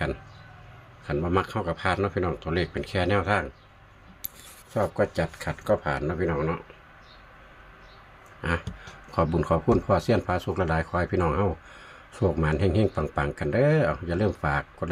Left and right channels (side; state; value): both; identical; correlation 1.00